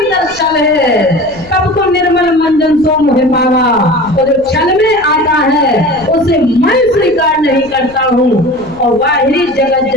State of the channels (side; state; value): left; noise; rumble, 22 dB below the sound